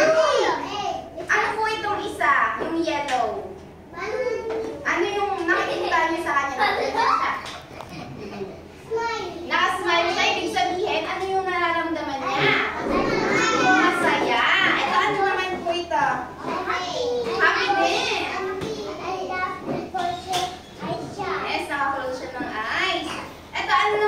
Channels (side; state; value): both; identical; correlation 1.00